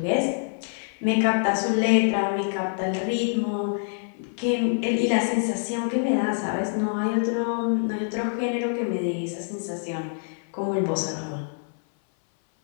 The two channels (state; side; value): silent; right; 58 dB below the other